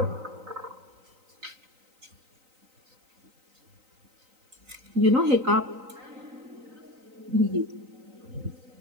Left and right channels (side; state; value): left; late; 3.9 ms